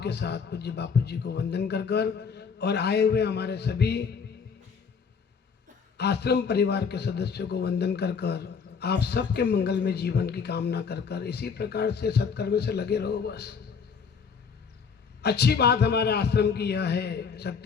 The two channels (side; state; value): right; quieter; 6.0 dB